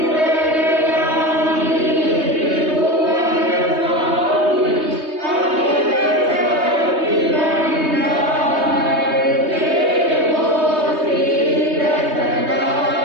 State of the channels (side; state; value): left; late; 3.2 ms